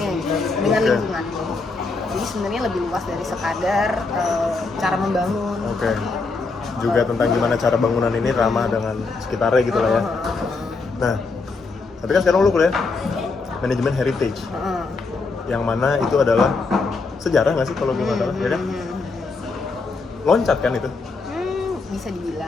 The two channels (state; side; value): quieter; right; 4.0 dB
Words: gitu, dengan lingkungan. Jadi sebenarnya lebih luas dari sekadar cara membangun. Juga tentang gimana cara bangunan ini ramah dengan sekitarnya gitu lah ya. Nah, tapi kan sekarang lu kuliah manajemen heritage, yang mana itu adalah sejarah nggak sih kalau gue nggak salah, ya kan? Loncat kan itu? Bisa